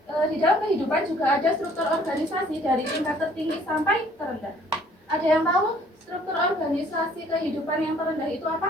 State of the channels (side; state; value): both; normal; correlation 0.58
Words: Di dalam kehidupan juga ada struktur organisasi dari tingkat tertinggi sampai terendah. Ada yang tahu struktur organisasi kehidupan yang terendah itu